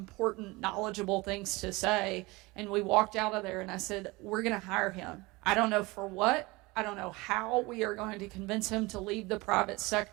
knowledgeable things to say, and we walked out of there, and I said, we're going to hire him. I don't know for what. I don't know how we are going to convince him to leave the private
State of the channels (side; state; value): left; quieter; 23.2 dB